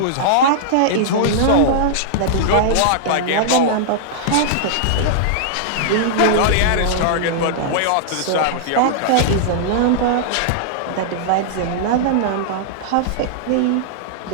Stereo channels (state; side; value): different; both; correlation -0.02